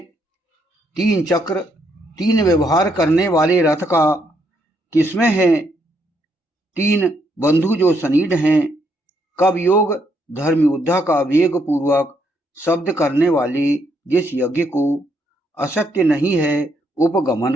तीन चक्र तीन व्यवहार करने वाले रथ का किसमें है, तीन बंधु जो सनीड हैं, कब योग धर्म योद्धा का वेग पूर्वक शब्द करने वाले जिस यज्ञ को असत्य नहीं है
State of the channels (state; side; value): normal; both; correlation 0.74